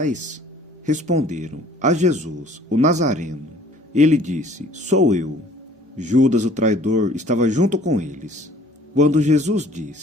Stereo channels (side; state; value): both; normal; correlation 0.54